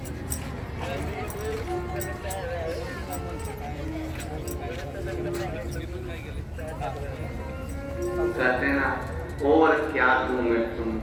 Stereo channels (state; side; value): identical; both; correlation 1.00